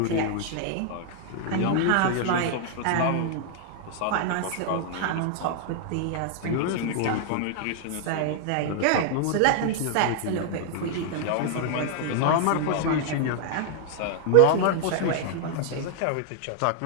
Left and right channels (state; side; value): different; both; correlation 0.00